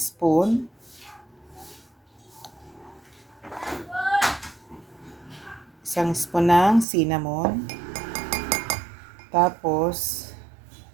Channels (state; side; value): drops out; left; at 6.9 s